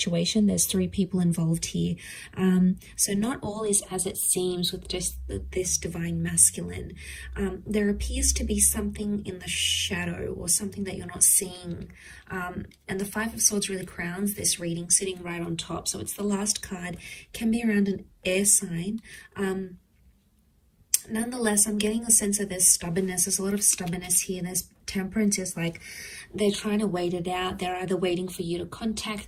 There's 3 people involved here. So not all is as it seems with just this Divine Masculine. There appears to be something in the shadow, or something that you're not seeing. And the 5 of Swords really crowns this reading, sitting right on top. So it's the last card, can be around an air sign. Nonetheless, I'm getting a sense of there's stubbornness. There's a lot of stubbornness here. There's Temperance is like they're trying to wait it out. They're either waiting for you to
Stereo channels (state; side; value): identical; both; correlation 1.00